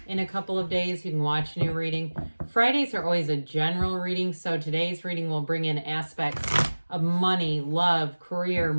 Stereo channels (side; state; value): both; inverted; correlation -1.00